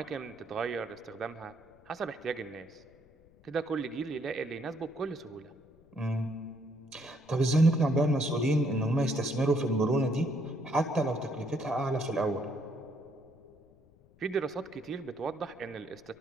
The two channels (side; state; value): left; noise; rumble, 29 dB below the sound